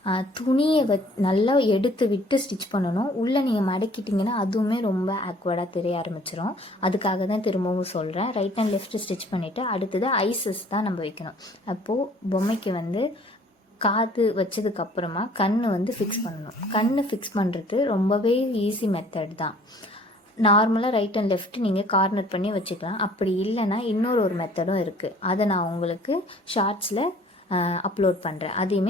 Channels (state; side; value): normal; both; correlation 0.55